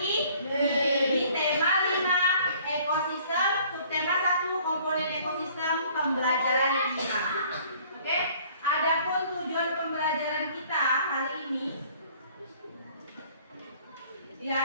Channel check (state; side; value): inverted; both; correlation -0.56